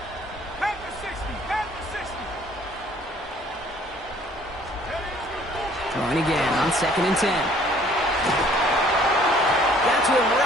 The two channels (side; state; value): both; normal; correlation 0.57